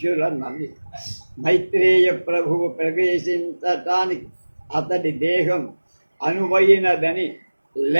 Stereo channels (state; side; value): inverted; both; correlation -1.00